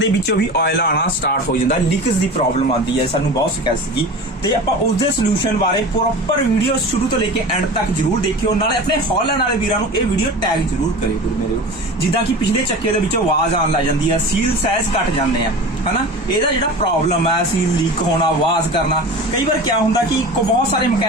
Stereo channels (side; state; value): both; normal; correlation 0.34